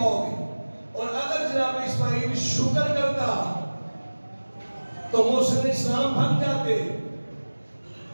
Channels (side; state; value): both; inverted; correlation -1.00